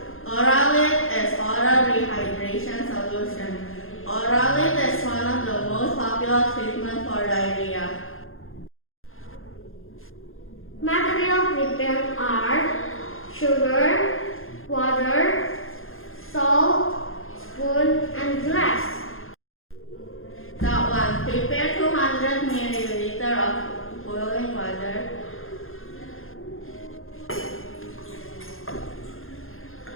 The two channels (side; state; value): right; late; 0.60 ms